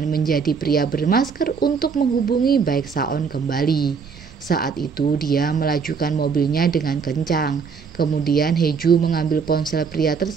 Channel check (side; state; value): left; quieter; 5.7 dB